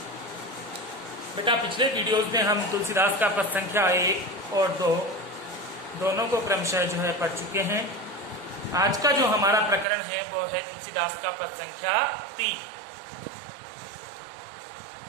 बेटा, पिछले वीडियोस में हम तुलसीदास का पद संख्या 1 और 2 दोनों को क्रमशः पढ़ चुके हैं। आज का जो हमारा प्रकरण है वो है तुलसीदास का पद संख्या 3।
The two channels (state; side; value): drops out; left; at 9.9 s